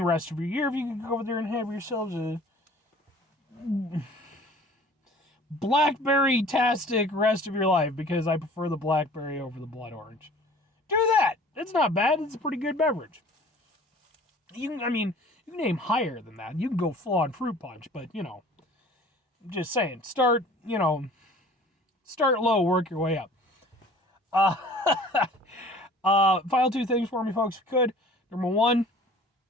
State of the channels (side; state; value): both; normal; correlation 0.48